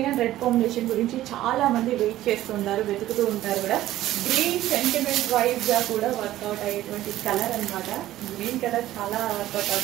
అండ్ రెడ్ కాంబినేషన్ గురించి చాలా మంది వెయిట్ చేస్తుంటారు, వెతుకుతూ ఉంటారు కూడా. గ్రీన్ సెంటిమెంట్ వైజ్ గా కూడా వర్కౌట్ అయ్యేటువంటి కలర్ అనమాట. గ్రీన్ కలర్ చాలా వర్కౌట్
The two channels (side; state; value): left; quieter; 14.4 dB